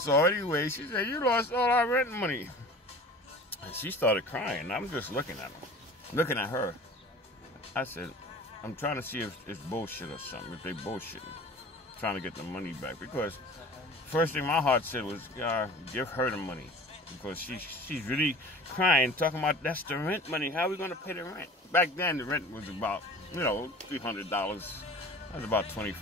anyway, she said, "You lost all our rent money." And she started crying. I'm just looking at her. I said, I'm trying to see if it's bullshit or something, if they bullshitting, trying to get the money back. Because first thing my heart said was, give her the money. Because she's really crying, talking about that's the rent money. How are we going to pay the rent? Back then, the rent was about, $300. That was about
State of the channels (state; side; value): normal; both; correlation 0.41